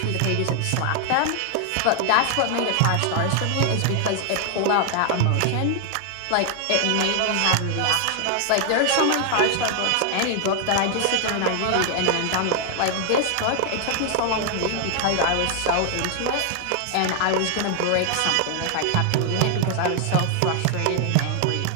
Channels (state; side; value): different; both; correlation 0.00